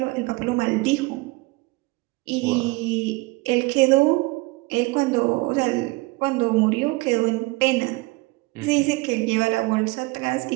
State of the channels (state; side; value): quieter; left; 23.5 dB